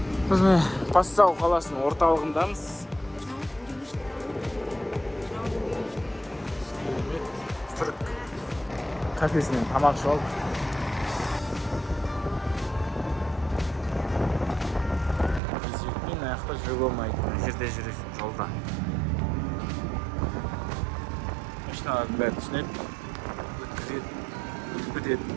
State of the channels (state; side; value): drops out; left; at 15.4 s